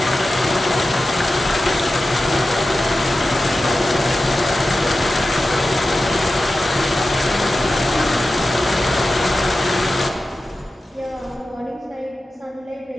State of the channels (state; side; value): normal; both; correlation 0.94